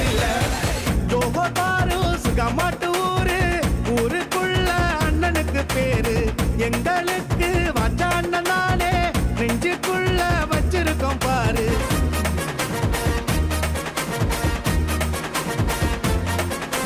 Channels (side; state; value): both; identical; correlation 1.00